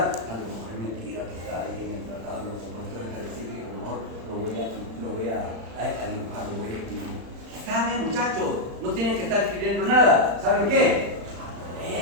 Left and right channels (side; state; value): left; late; 35 ms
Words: a lo mejor es mentira que está ahí en el tratado de los compuestos específicos, mejor lo voy a dibujar, lo voy a escribir. ¿Saben, muchachos? No tienen que estar escribiendo nada. ¿Saben qué?